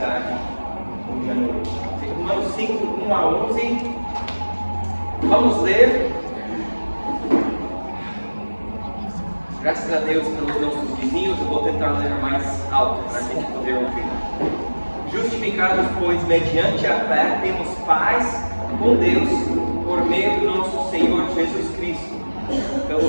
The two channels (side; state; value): both; inverted; correlation -1.00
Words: hoje à noite. Romanos 5, 1 a 11. Vamos ler. Graças a Deus pelos nossos vizinhos, eu vou tentar ler mais alto para a gente poder ouvir. Justificados, pois, mediante a fé, temos paz com Deus por meio do nosso Senhor Jesus Cristo,